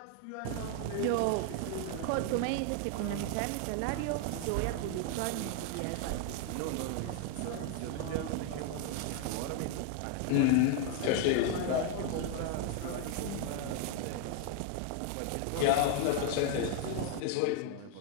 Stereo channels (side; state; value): both; different; correlation 0.01